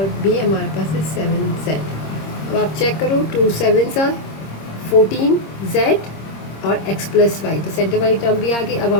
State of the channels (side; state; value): right; late; 26 ms